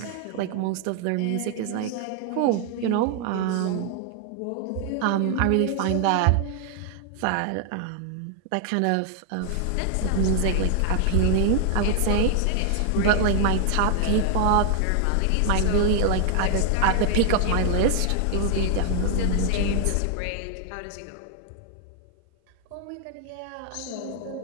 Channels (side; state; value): both; different; correlation 0.00